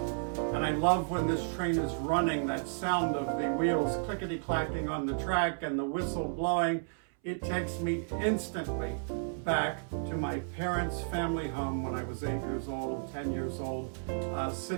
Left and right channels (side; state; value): left; silent; 56 dB below the other